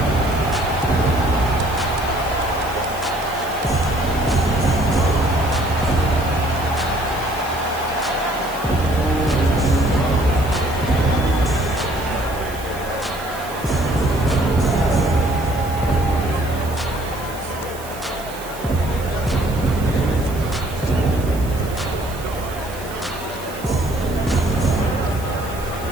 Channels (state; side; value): noise; right; hiss, 17 dB below the sound